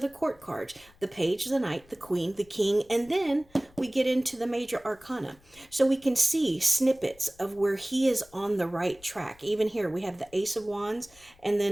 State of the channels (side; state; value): left; noise; rumble, 28 dB below the sound